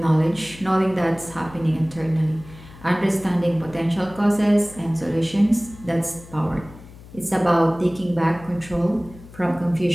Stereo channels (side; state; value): left; noise; hum, 19 dB below the sound